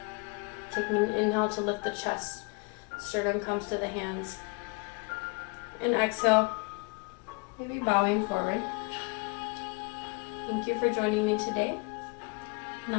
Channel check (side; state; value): right; quieter; 30.2 dB